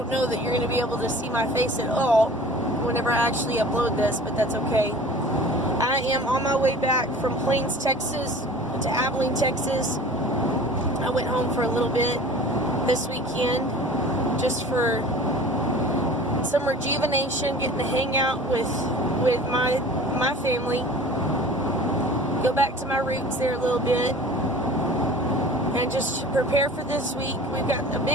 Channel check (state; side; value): normal; both; correlation 0.42